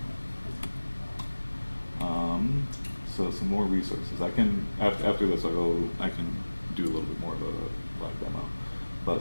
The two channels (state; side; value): inverted; both; correlation -1.00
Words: So some more resources. I can after this I can do a little bit more of a live demo.